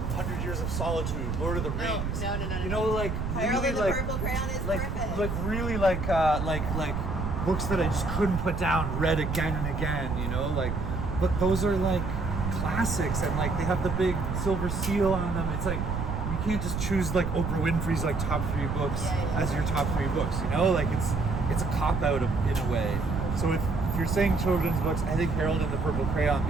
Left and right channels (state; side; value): noise; right; rumble, 3 dB below the sound